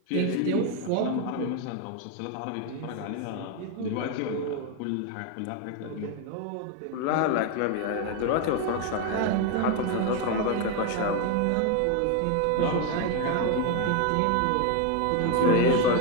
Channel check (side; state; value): both; different; correlation 0.01